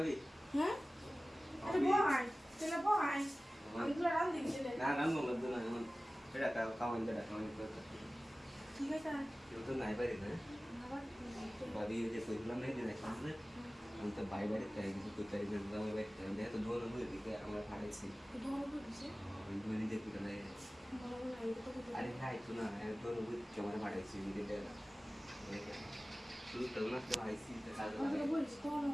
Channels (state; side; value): normal; both; correlation 0.97